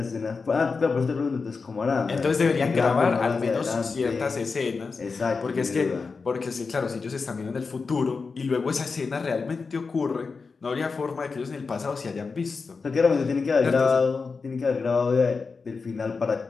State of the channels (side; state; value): right; quieter; 4.7 dB